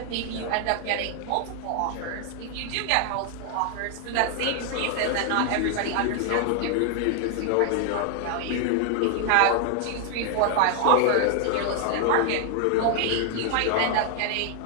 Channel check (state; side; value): different; both; correlation 0.00